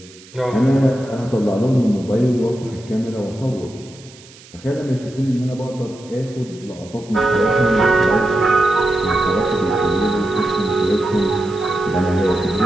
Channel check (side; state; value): right; noise; hiss, 22 dB below the sound